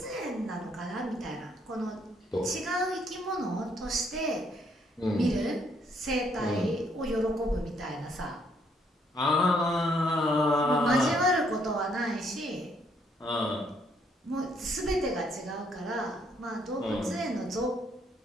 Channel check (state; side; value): normal; both; correlation 0.69